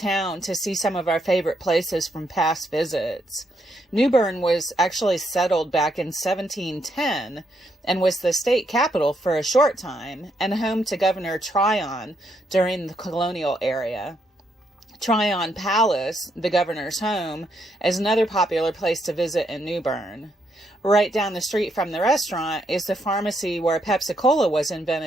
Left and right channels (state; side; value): normal; both; correlation 0.76